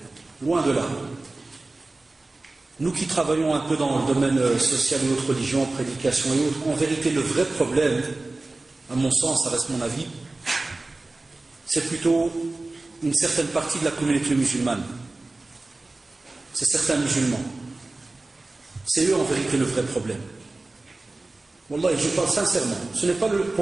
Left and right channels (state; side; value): quieter; left; 3.1 dB